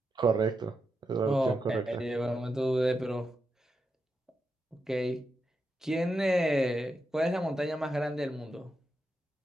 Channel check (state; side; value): normal; both; correlation 0.86